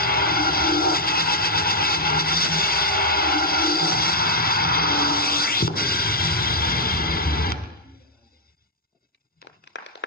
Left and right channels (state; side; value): normal; both; correlation -0.03